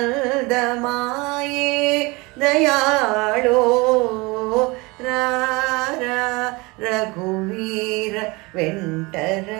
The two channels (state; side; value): quieter; left; 25.0 dB